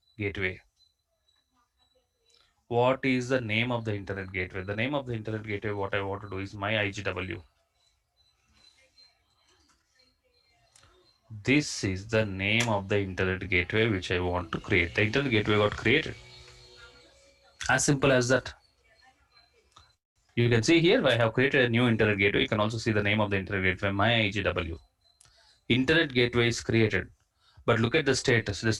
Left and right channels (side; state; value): both; identical; correlation 1.00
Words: gateway. What is the name of the internet gateway? The name of the internet gateway, what I want to do is my IGW. This is the name of the internet gateway which I want to create. The internet gateway got created. As simple as that. You can see here I have created a new internet gateway. You can also see the name of the internet gateway, my IGW. Internet gateway is created. But look at the status. The